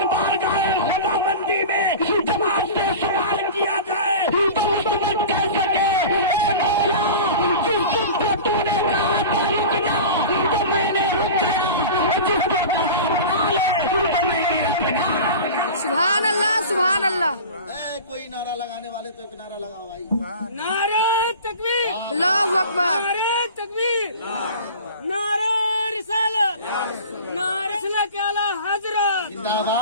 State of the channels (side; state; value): both; inverted; correlation -0.35